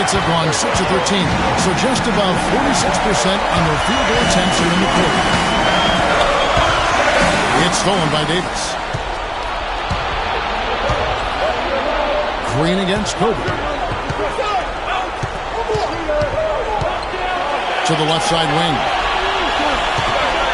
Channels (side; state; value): both; identical; correlation 1.00